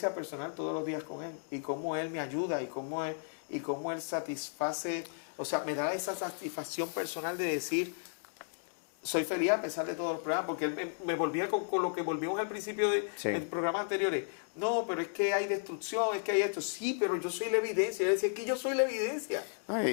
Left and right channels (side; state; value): right; silent; digital silence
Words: personal todos los días con Él y cómo Él me ayuda y cómo Él satisface, o sea, me da esa satisfacción personal de decir, soy feliz a pesar de todos los problemas, porque él me volvía con lo que volvimos al principio de Sí. en programas anteriores. No, pero es que hay destrucción, es que hay esto. Sí, pero yo soy la evidencia. Él decía, es que yo soy la evidencia. No,